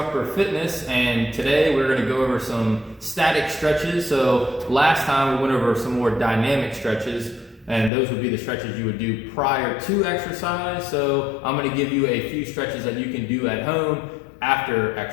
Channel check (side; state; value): right; drops out; at 7.9 s